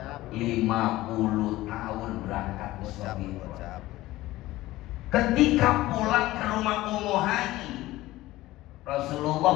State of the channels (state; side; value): quieter; right; 17.1 dB